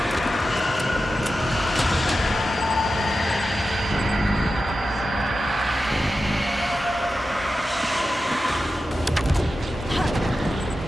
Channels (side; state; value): both; normal; correlation 0.92